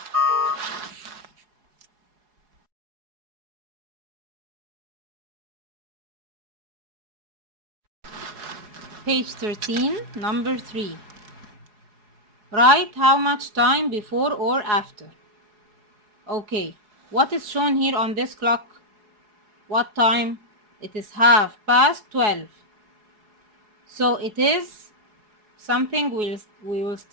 Page 13, number 3. Write how much time before or after. Okay, what is shown here on this clock? What time? It is 12:30. So it is something we will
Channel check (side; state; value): left; late; 4.8 ms